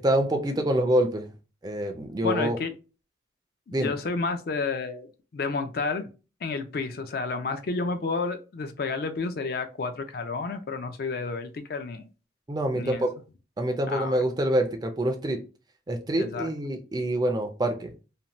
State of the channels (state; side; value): normal; both; correlation 0.52